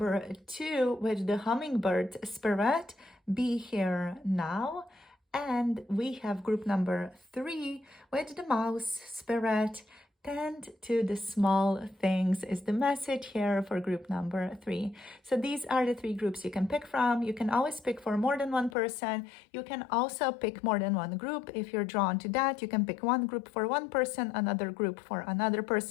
two with the Hummingbird spirit. Be here now. And we have group number three with the Mouse spirit. Tend to the small things is the message here for group number three. So these are the three groups you can pick from. You can always pick for more than one person. You can also pick more than one group. If you're drawn to that, you can pick one group for one person, another group for another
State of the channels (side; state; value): right; drops out; at 18.8 s